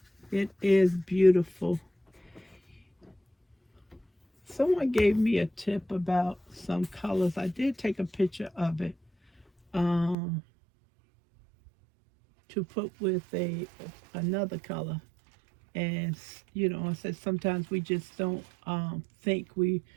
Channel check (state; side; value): drops out; left; at 10.2 s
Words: It is beautiful. Someone gave me a tip about some colors. I did take a picture of it to put with another color, And you know, I said sometimes we just don't think